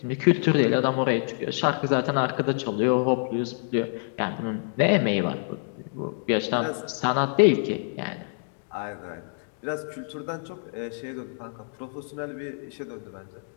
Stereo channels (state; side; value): silent; right; digital silence